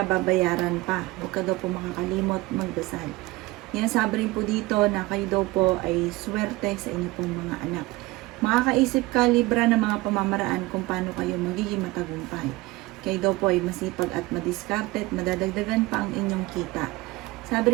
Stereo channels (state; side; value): quieter; left; 20.9 dB